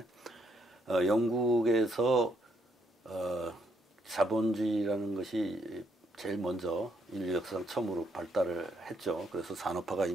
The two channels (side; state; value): both; normal; correlation 0.73